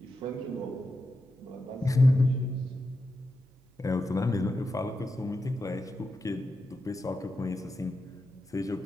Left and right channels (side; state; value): right; noise; hum, 29 dB below the sound